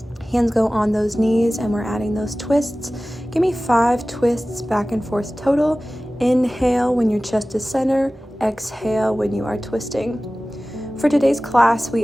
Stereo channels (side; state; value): both; normal; correlation 0.97